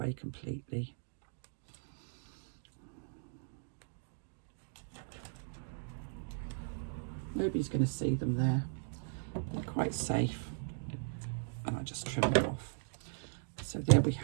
completely. Nobody's going to see them there. They're quite safe, and I just trim them off. So there we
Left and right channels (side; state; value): left; silent; digital silence